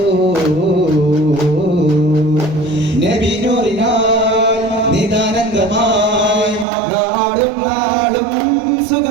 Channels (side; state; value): left; drops out; at 6.7 s